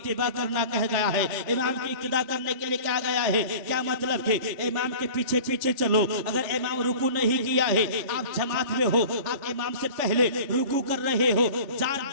करना कह गया है। इमाम की इक्तिदा करने के लिए कहा गया है। क्या मतलब कि इमाम के पीछे पीछे चलो। अगर इमाम रुकू नहीं किया है, आप जमात में हो, आप इमाम से पहले रुकू कर रहे हो,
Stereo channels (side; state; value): left; late; 3.4 ms